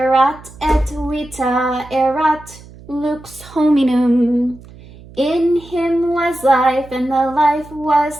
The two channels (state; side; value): noise; right; hum, 20 dB below the sound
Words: et vita erat lux hominum. In him was life, and the life